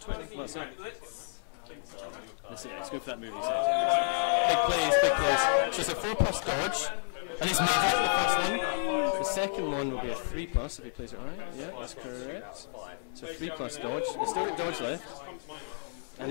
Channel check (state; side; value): silent; right; 57 dB below the other